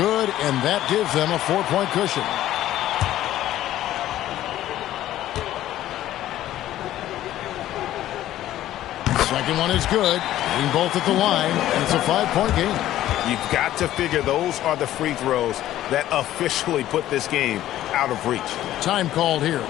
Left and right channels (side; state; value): right; quieter; 13.4 dB